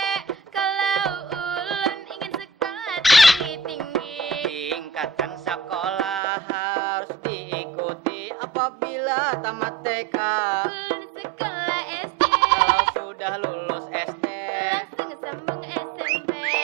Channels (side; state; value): left; drops out; at 6.2 s